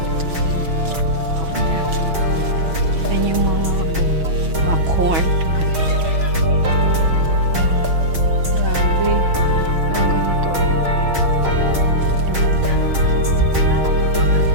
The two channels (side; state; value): left; late; 6.2 ms